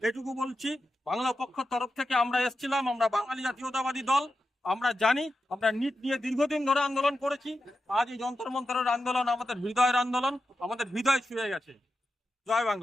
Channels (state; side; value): normal; both; correlation 0.90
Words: এটুকু বলছি। বাংলা পক্ষের তরফ থেকে আমরা এসেছিলাম, আমরা বাঙালি জাতীয়তাবাদী দল, আমরা জানি আমরা নিট নিয়ে দীর্ঘদিন ধরে আন্দোলন করেছি। আজ এই যন্তর মন্তরের আন্দোলন আমাদের হৃদয়ের আন্দোলন, আমাদের হৃদয় ছুঁয়ে গেছে। জয়